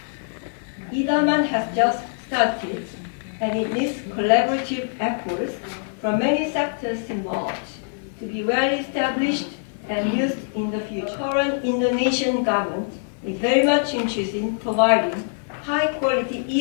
e-Daman has just started, and it needs collaborative efforts from many sectors involved to be well established and used in the future. Current Indonesian government is very much interested in providing high-quality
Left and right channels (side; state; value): right; silent; digital silence